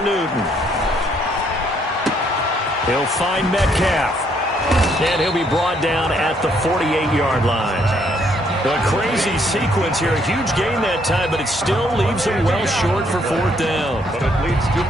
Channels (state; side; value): normal; both; correlation 0.69